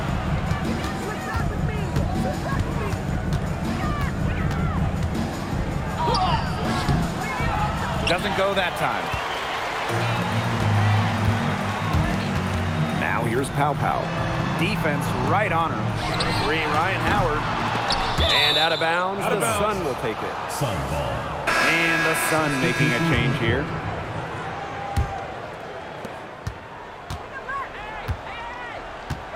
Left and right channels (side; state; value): both; identical; correlation 1.00